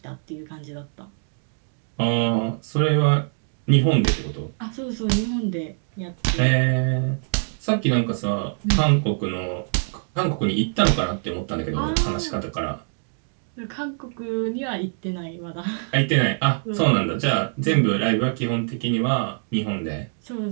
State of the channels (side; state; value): left; silent; 63 dB below the other